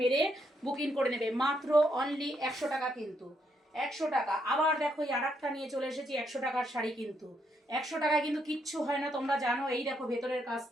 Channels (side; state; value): both; normal; correlation 0.76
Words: বুকিং করে নেবে, মাত্র অনলি 100 টাকা কিন্তু। 100 টাকা। আবার দেখো এই আর একটা নিয়ে চলে এসেছি 100 টাকার শাড়ি, কিন্তু 100 টাকায় কিন্তু কিচ্ছু হয় না, তোমরা জানো। এই দেখো ভেতরের